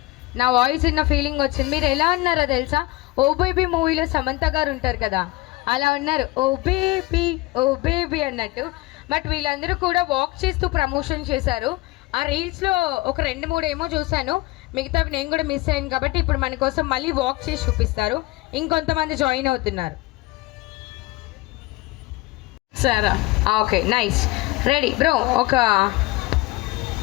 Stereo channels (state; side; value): quieter; right; 20.8 dB